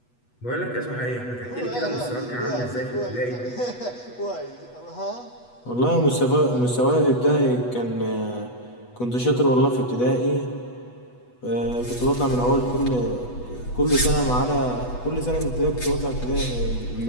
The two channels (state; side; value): late; right; 8.2 ms